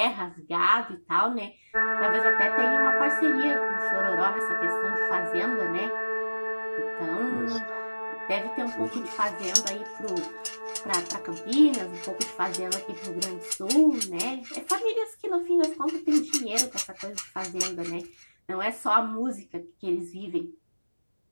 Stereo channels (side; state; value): both; inverted; correlation -1.00